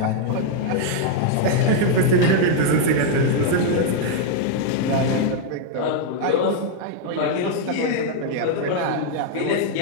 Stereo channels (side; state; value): both; different; correlation 0.00